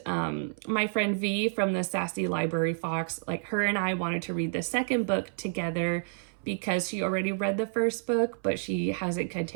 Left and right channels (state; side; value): silent; left; 58 dB below the other